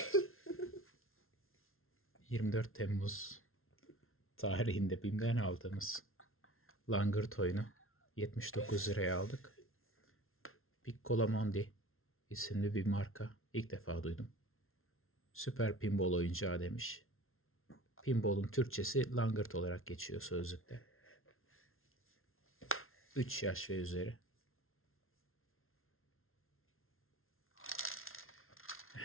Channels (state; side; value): late; right; 0.61 ms